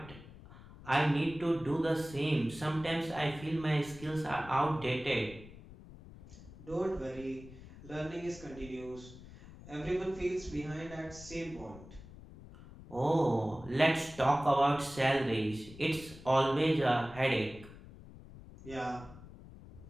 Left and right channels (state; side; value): noise; left; rumble, 17 dB below the sound